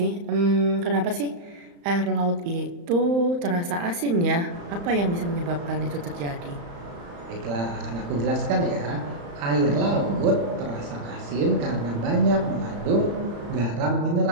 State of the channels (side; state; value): left; late; 35 ms